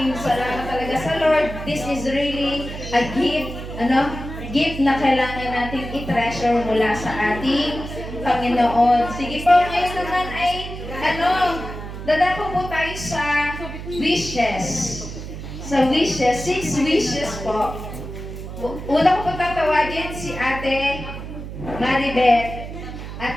salamat talaga sa Lord. This is really a gift, gift na kailangan natin i-treasure mula sa ating Panginoon. Sige po, ngayon naman ay, dadako po tayo sa wishes. Sa wishes, 6 wishes po. Una ko po tatawagin si Ate Maribeth.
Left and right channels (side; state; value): right; noise; hum, 9 dB below the sound